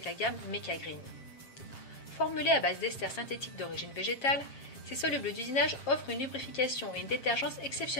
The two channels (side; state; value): right; late; 7.5 ms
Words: la gamme Mecagreen. Formulés à base d'esters synthétiques d'origine végétale, ces solubles d'usinage offrent une lubrification et une détergence